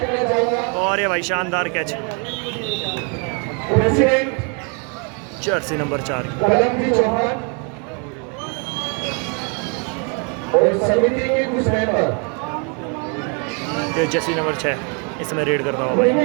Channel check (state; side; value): quieter; left; 36.0 dB